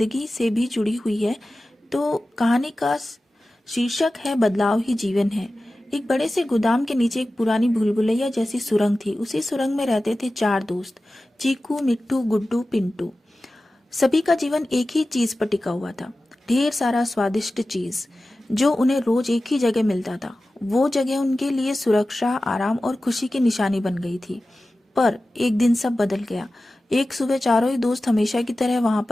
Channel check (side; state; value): both; normal; correlation 0.95